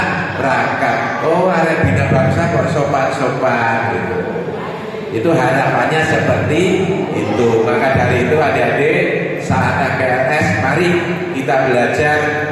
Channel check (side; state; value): both; identical; correlation 1.00